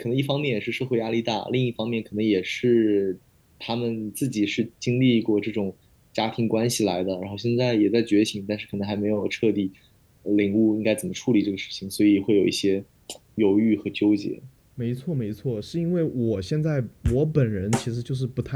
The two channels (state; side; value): identical; both; correlation 1.00